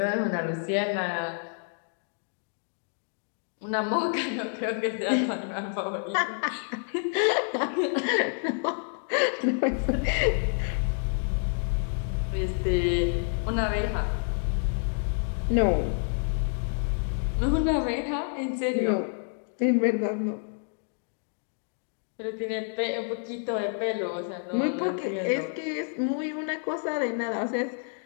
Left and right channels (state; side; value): silent; right; 58 dB below the other